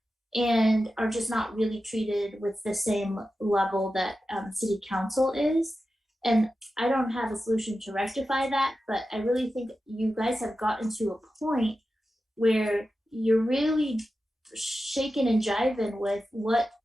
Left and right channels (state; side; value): normal; both; correlation 0.92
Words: and are just not really treated with the same level that city council is. And I don't have a solution to rectify that, but I really think you guys have gotten to a point where you're really shaking and jiving with what